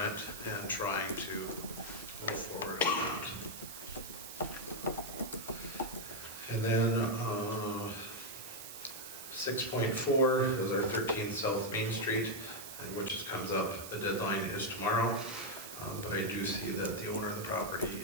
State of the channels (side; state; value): right; noise; hiss, 11 dB below the sound